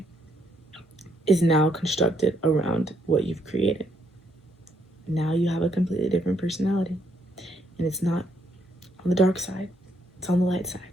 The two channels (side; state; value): both; normal; correlation 0.73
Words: is now constructed around what you've created. Now you have a completely different personality. And it's not on the dark side, it's on the light side.